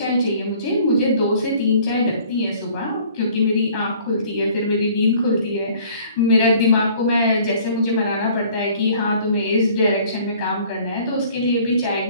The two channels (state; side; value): inverted; both; correlation -0.54